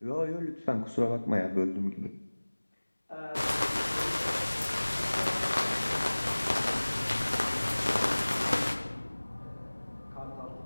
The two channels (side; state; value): both; inverted; correlation -1.00